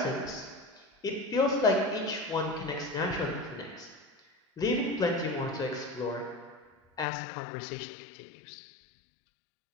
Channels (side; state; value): right; drops out; at 7.1 s